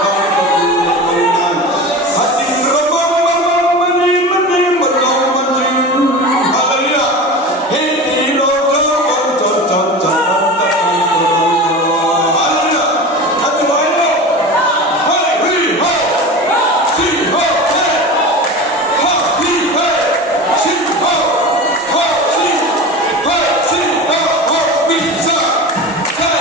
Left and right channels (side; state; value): both; normal; correlation 0.31